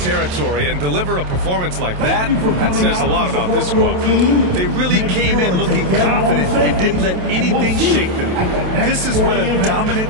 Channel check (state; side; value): late; left; 27 ms